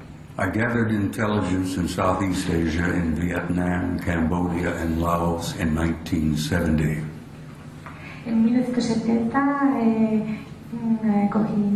I gathered intelligence in Southeast Asia in Vietnam, Cambodia, and Laos in 1970. En 1970 cogí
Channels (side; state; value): both; identical; correlation 1.00